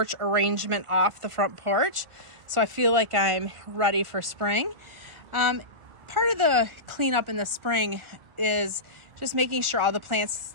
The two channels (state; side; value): late; left; 1.4 ms